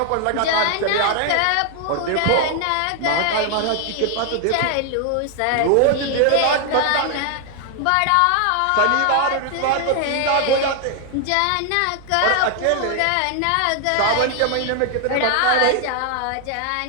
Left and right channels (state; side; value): different; both; correlation 0.00